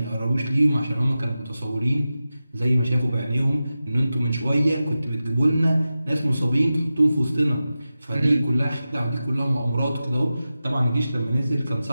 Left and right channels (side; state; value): both; inverted; correlation -0.93